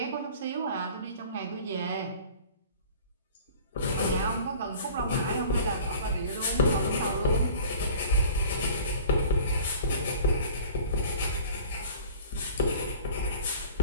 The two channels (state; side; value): inverted; both; correlation -0.45